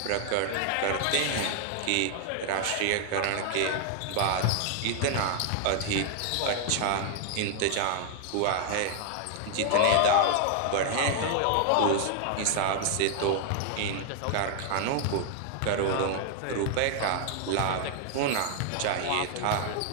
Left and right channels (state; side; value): different; both; correlation 0.00